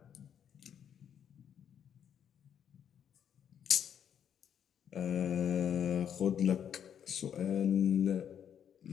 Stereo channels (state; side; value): quieter; right; 8.8 dB